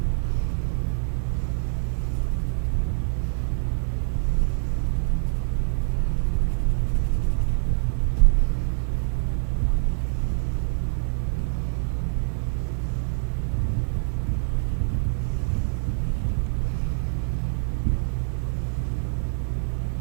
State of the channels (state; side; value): silent; left; 61 dB below the other